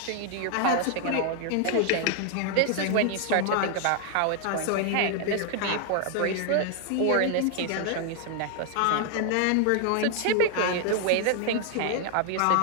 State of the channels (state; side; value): different; both; correlation 0.00